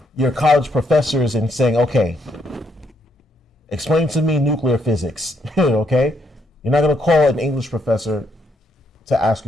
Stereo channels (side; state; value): both; normal; correlation 0.75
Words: your college professors and saying, okay, explain to me nuclear physics, okay? You're not going to call an English professor to ask